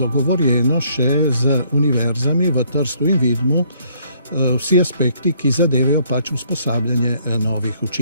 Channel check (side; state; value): both; inverted; correlation -0.66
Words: še z univerzami v Trstu in Vidmu vsi aspekti, ki zadevajo pač usposabljanje novih